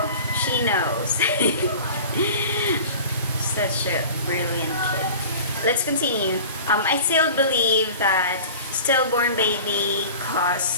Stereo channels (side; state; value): both; inverted; correlation -0.39